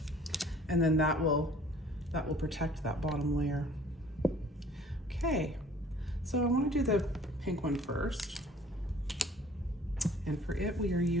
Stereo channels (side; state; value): both; normal; correlation 0.52